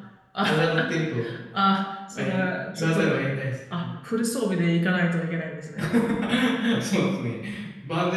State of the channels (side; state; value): both; identical; correlation 1.00